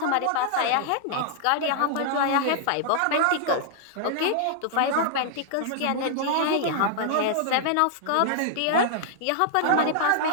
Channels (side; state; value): both; different; correlation -0.01